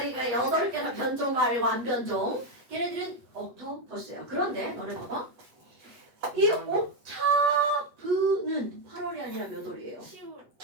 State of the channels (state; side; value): late; left; 8.0 ms